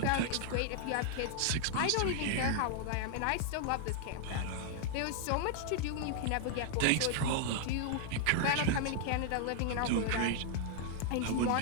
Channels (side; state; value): both; different; correlation 0.00